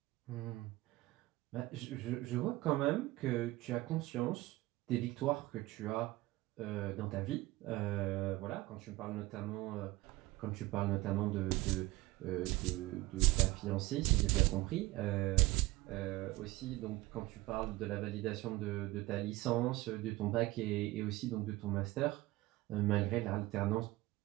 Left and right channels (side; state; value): left; quieter; 19.2 dB